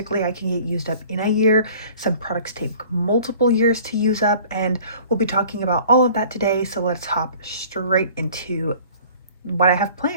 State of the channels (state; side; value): inverted; both; correlation -0.49